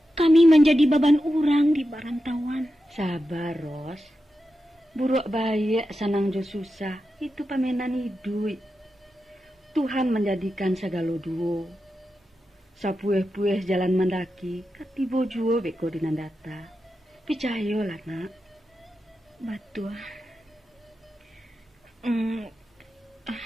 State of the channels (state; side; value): normal; both; correlation 0.90